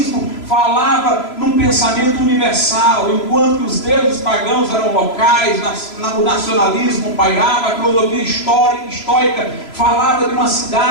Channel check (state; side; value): late; right; 3.0 ms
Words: falava num pensamento universal, enquanto os deuses pagãos eram locais, o nacionalismo pairava. A filosofia estoica falava de uma